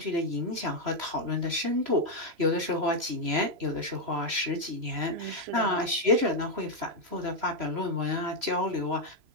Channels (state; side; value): late; left; 3.0 ms